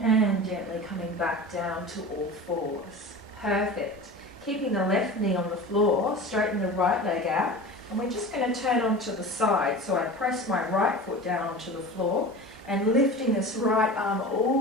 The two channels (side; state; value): both; normal; correlation 0.33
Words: And gently coming back down to all fours. Perfect. Keeping the left knee on the floor, straighten the right leg out. And we're just going to turn onto the side. So I press my right foot down onto the floor and lifting this right arm